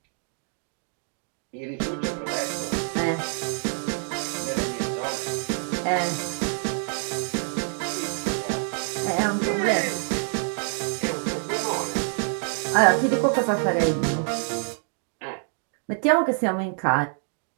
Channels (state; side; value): silent; left; 61 dB below the other